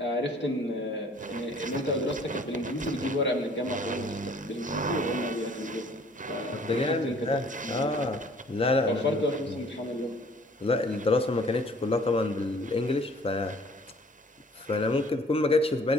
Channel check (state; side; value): normal; both; correlation 0.55